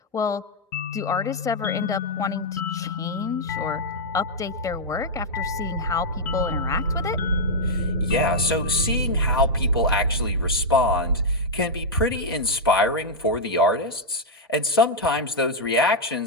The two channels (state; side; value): normal; both; correlation -0.04